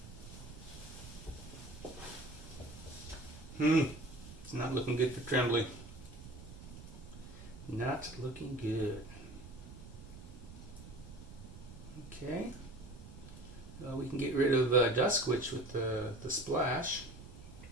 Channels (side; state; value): right; noise; rumble, 14 dB below the sound